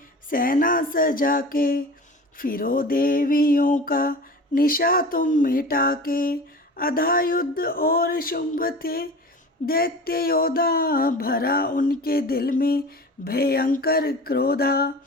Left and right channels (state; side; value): normal; both; correlation 0.37